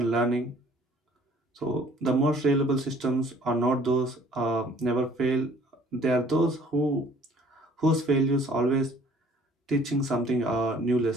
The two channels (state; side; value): normal; both; correlation 0.56